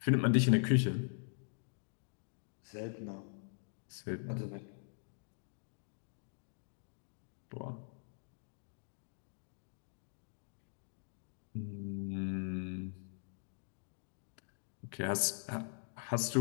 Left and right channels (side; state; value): right; silent; digital silence